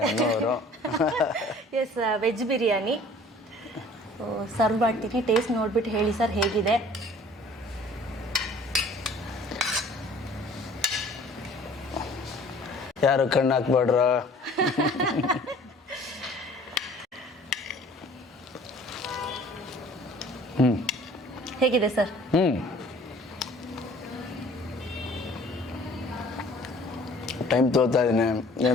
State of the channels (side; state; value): both; normal; correlation 0.51